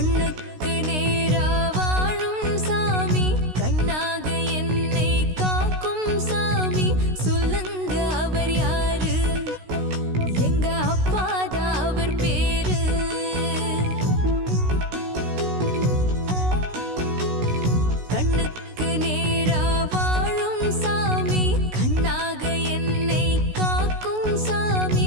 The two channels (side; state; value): left; late; 16 ms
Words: நேரா வாழும் சாமி, கண்ணாக என்னை காக்கும் சாமி, சொல்லுங்க அவர் யாரு? எங்க அப்பாதான்.